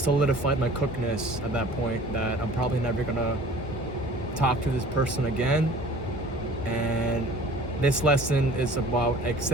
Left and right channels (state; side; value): normal; both; correlation 0.48